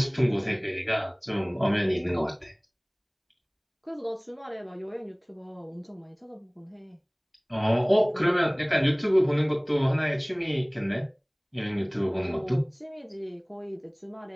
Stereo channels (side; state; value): both; identical; correlation 1.00